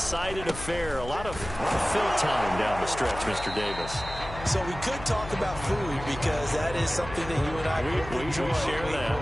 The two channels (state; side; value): noise; left; hum, 11 dB below the sound